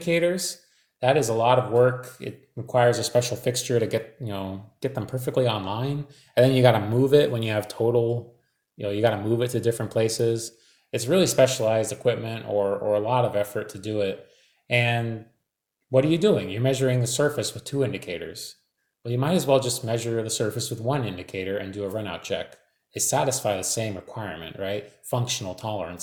that is a lot of work. It requires a special fixture to get them perfectly online. And then you got to move it when you have total, you got to move it to different places. It's really specialized equipment or a lot of effort to do it. And what are you doing? You're measuring the surface with two indicators. Well, you might as well just measure the surface with one indicator and do a runout check. They satisfy the same requirement, right? Functional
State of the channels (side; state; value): both; identical; correlation 1.00